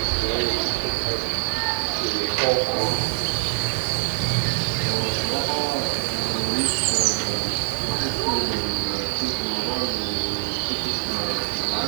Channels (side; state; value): left; silent; 63 dB below the other